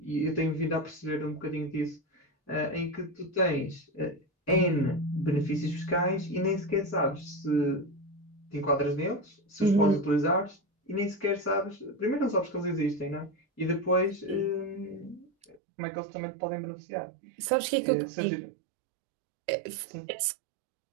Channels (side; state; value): left; drops out; at 15.6 s